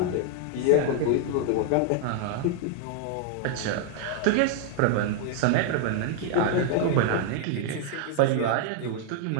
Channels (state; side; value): different; both; correlation 0.00